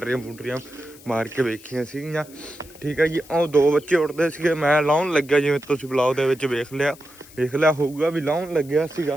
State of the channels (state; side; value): noise; left; hiss, 22 dB below the sound